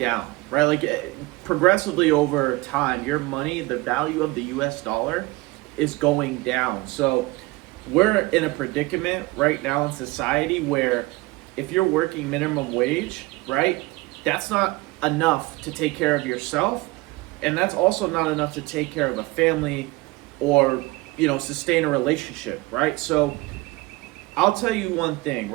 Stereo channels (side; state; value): left; quieter; 22.0 dB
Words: right? Like progressively over time, your money, the value of the US dollar is going down. So we're in a predicament right now in society where if you're working minimum wage, right, that's not enough to take care of yourself. And that's also not enough to take care of a family or, sustain a relationship, right? So I'll tell you one thing,